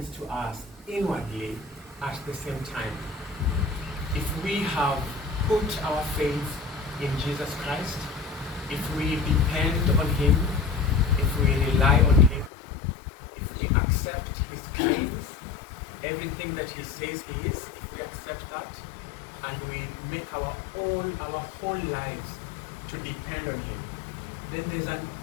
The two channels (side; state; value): right; drops out; at 12.5 s